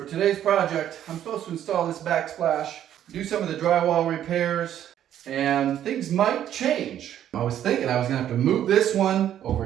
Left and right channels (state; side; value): quieter; left; 10.9 dB